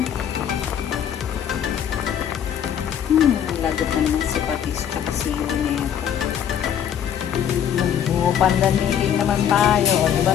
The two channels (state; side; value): quieter; right; 9.2 dB